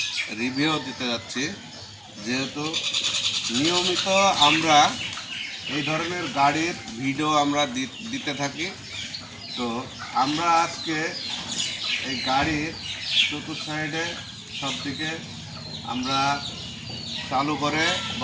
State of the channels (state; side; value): identical; both; correlation 1.00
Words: রিভিউ দিতে যাচ্ছি। যেহেতু নিয়মিত আমরা এই ধরনের গাড়ির ভিডিও আমরা দিতে থাকি, তো আমরা আজকে এই গাড়ির চতুর্থ সাইডে সব দিকে আমরা চালু করে